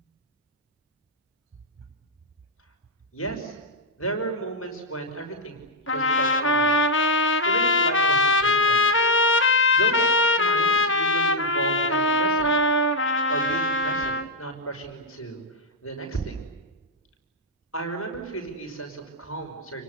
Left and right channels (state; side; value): normal; both; correlation -0.01